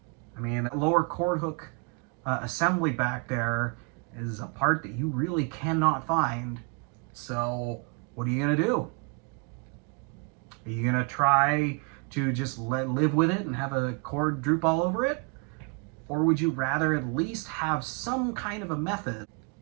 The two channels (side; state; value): left; quieter; 31.3 dB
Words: I mean, that lower cord hook assembly back there is a part that you really cannot find. So what are you gonna do? Are you gonna try to just live with it and have a cord droop all over it? Or would you rather at least have some kind of a method